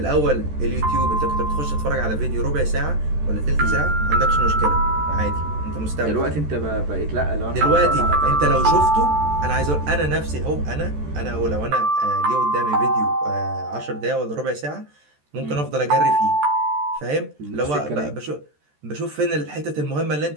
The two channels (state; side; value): late; left; 14 ms